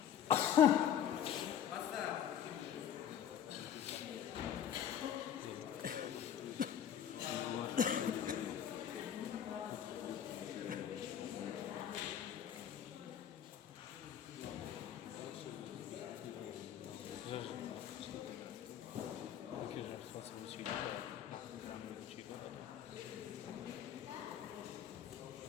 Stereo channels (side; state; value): right; quieter; 9.5 dB